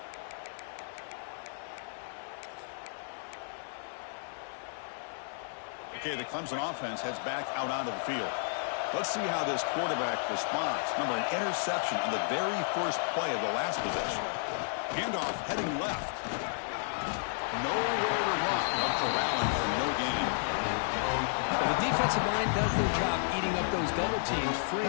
Okay, the Clemson offense heads back out onto the field. Let's see how this quarterback responds. Remember, an interception on the very first play of the last possession. Handoff heading left. Nowhere to run. No corralling for no gain. Well, the defensive line does their job eating up those double teams, freeing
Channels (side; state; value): right; silent; digital silence